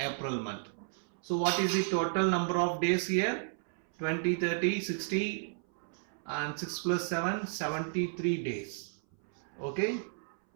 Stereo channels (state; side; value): silent; left; 56 dB below the other